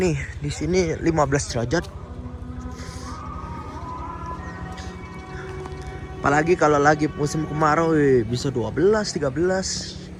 Di sini 15 derajat. Apalagi kalau lagi musim kemarau bisa 12, 13.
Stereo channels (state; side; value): identical; both; correlation 1.00